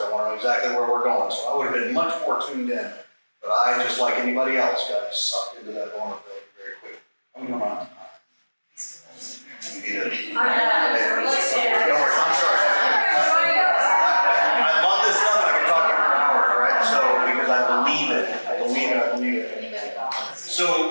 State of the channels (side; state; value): both; inverted; correlation -1.00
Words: I want to know exactly where we're going. So I would have been much more tuned in. But I, just like anybody else, got sucked into that vulnerability very quickly. I'm going on. You need to. Don't worry, I'm sorry. I love this stuff and I can talk for hours, right? So, because I believe it.